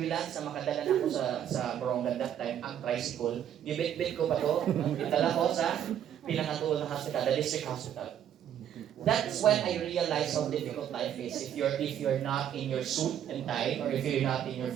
na makadala na ako sa Borongan that time, ang tricycle. Gibit-bit ko pa to. Itala ko sa pinakatuol na hospital, the district hospital. That's when I realized how difficult life is if you're not in your suit and tie or if you're not in your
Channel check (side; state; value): left; quieter; 10.0 dB